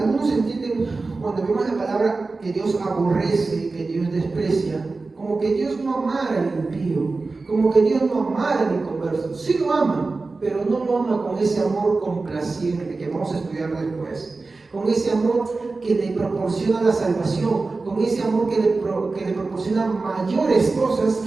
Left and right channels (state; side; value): quieter; left; 3.7 dB